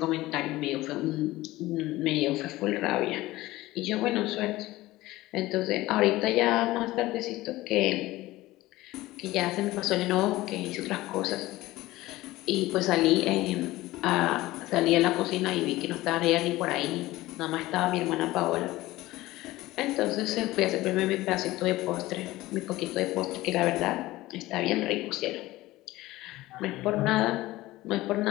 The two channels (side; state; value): right; quieter; 17.9 dB